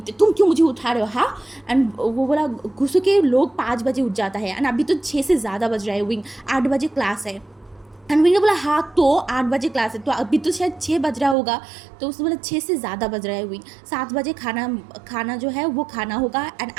तुम क्यों मुझे उठा रहे हो हाँ। एंड वो बोला गुस्से के लोग 5 बजे उठ जाता है एंड अभी तो 6 से ज़्यादा बज रहा है, विंग 8 बजे क्लास है। एंड विंग ने बोला हाँ तो 8 बजे क्लास है तो अभी तो शायद 6 बज रहा होगा, तो उसने बोला 6 से ज़्यादा बज रहा है विंग, 7 बजे खाना जो है वो खाना होगा एंड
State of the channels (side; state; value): left; drops out; at 11.4 s